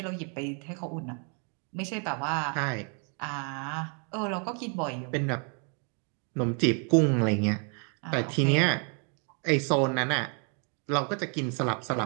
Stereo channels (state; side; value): quieter; left; 39.3 dB